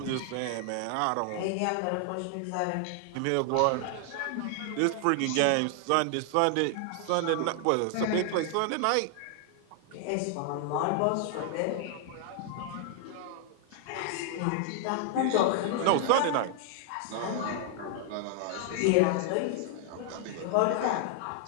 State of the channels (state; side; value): different; both; correlation 0.00